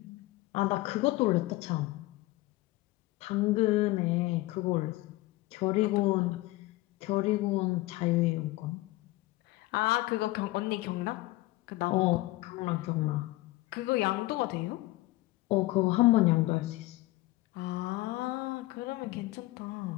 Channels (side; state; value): right; quieter; 19.4 dB